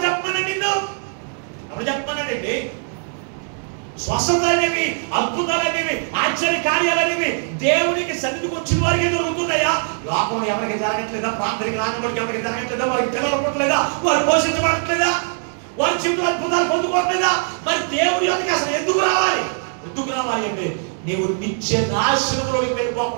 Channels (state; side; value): silent; left; 59 dB below the other